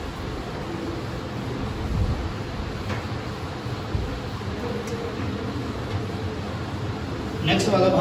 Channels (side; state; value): both; identical; correlation 1.00